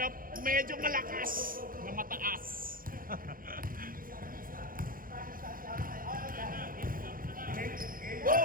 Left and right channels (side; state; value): left; late; 0.41 ms